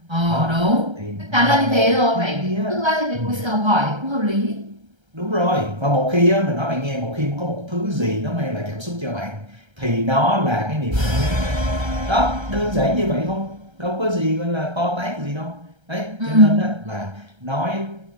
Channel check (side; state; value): left; late; 1.3 ms